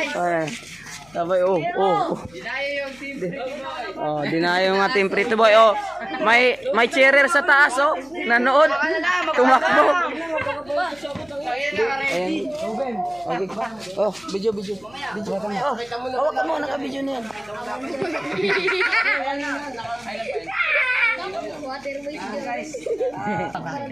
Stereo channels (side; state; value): left; noise; hum, 27 dB below the sound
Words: Ayan. Sabay, oh. Dinayo yung Team Pretty Boy. Oh, dinayo nga Team Pretty Boy. Oh, may cheerer sa taas, oh. Nanood. Tumakbo. Ayan. Okay. Oh, video. Oh, hawak ka mo, naka-video na yan.